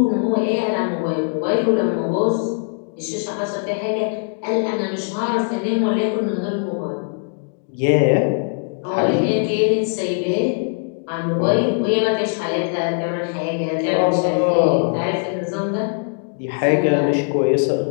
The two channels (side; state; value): right; silent; 65 dB below the other